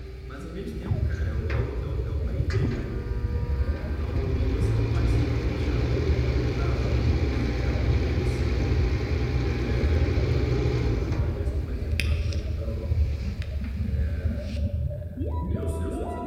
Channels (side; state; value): both; identical; correlation 1.00